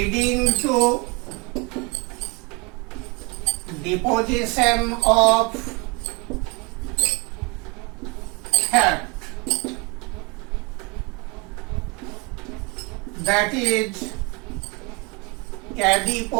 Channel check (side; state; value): left; quieter; 29.1 dB